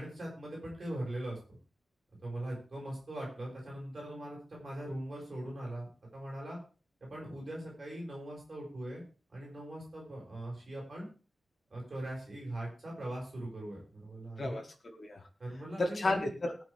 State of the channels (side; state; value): both; normal; correlation 0.93